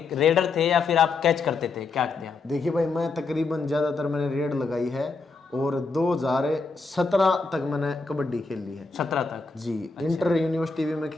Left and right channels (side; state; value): right; quieter; 4.1 dB